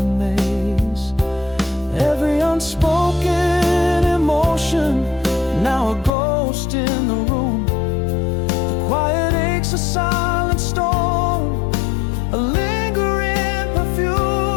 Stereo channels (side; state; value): right; drops out; at 6.1 s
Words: maze. Every unspoken emotion, now a ghost in the room. The quiet aches, a silent storm, a lingering perfume.